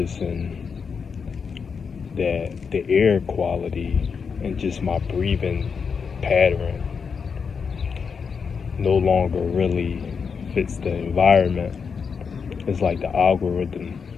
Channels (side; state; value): right; quieter; 5.9 dB